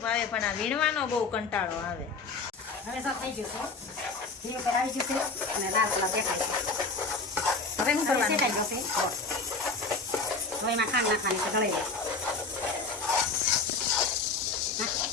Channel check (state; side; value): quieter; right; 4.0 dB